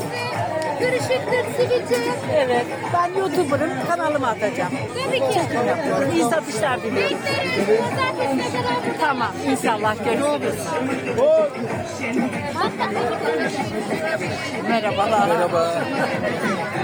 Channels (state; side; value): identical; both; correlation 1.00